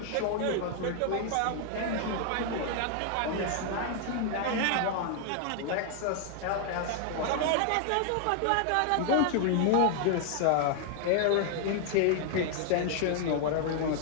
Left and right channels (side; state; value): both; different; correlation 0.00